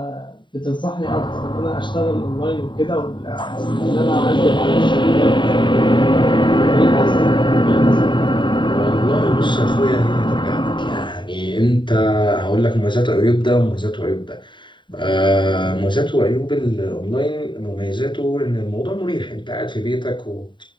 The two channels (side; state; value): right; late; 0.23 ms